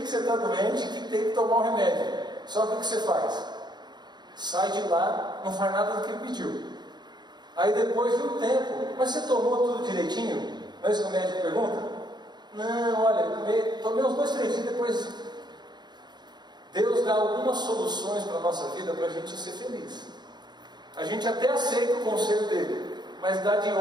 que você está doente e que tem que tomar um remédio. Só que o que você faz? Sai de lá, não faz nada do que ele pediu. Aí depois de um tempo, mas você tomou tudo direitinho? Não é isso que o médico pergunta? Não, olha, tomei uns 2, 3 dias, depois Deus dá algumas soluções para a nossa vida para a gente ser feliz. A gente até aceita o conselho dele, mas dá de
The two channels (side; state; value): left; late; 0.21 ms